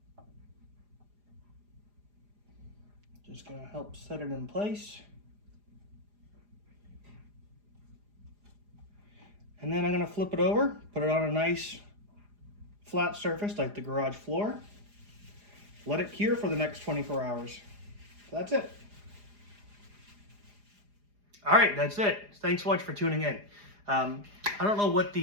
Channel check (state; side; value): late; left; 4.9 ms